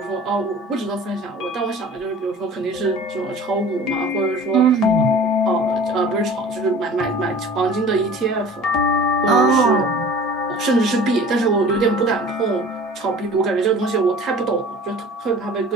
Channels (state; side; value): normal; both; correlation 0.44